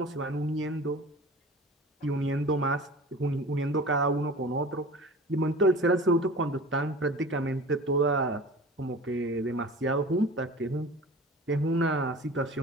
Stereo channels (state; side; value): normal; both; correlation 0.39